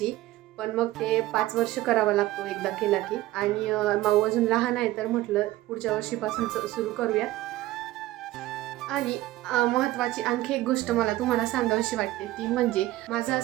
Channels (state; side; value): quieter; left; 16.5 dB